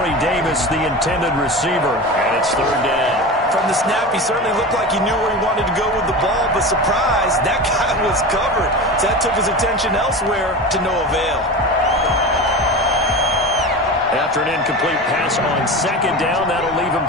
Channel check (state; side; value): normal; both; correlation 0.28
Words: Davis, the intended receiver, and it's 3rd down. From the snap, he certainly looked like he knew where he wanted to go with the ball, but surprise, that guy was covered. So that took his attention elsewhere to no avail. After an incomplete pass on 2nd down, that'll leave him